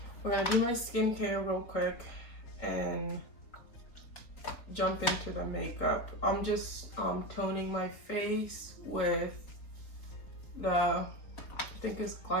we're gonna do my skincare real quick and jump into the makeup. I'm just toning my face with the, I think it's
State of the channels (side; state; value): right; late; 4.1 ms